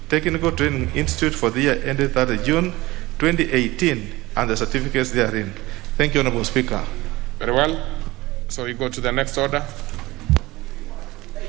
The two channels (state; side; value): quieter; left; 19.7 dB